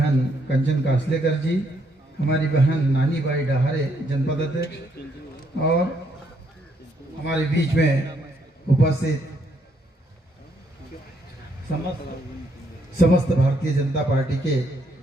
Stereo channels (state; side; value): normal; both; correlation 0.73